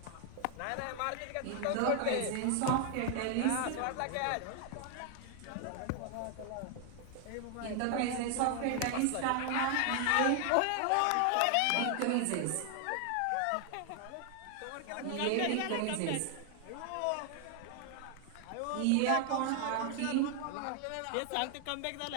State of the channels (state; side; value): different; both; correlation 0.00